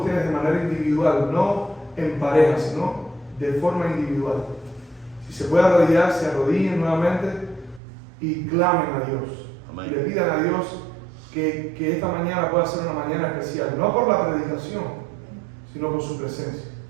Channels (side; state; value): left; drops out; at 7.8 s